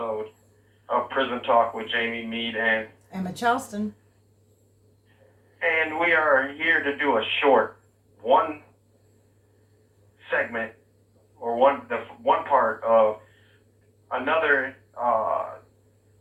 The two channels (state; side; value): identical; both; correlation 1.00